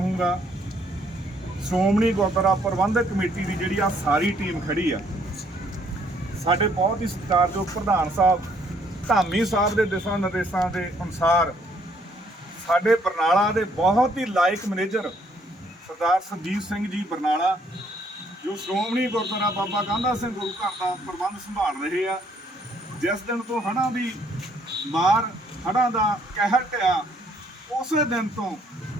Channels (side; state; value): both; normal; correlation 0.67